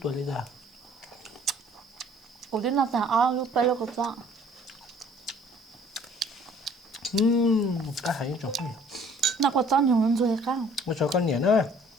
tuổi đi ra cú tí nó thằng lúc bây giờ có sao cá hay trong phố nó có cho nhiều hơn rồi cá một số con nhện nữa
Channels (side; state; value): both; normal; correlation 0.56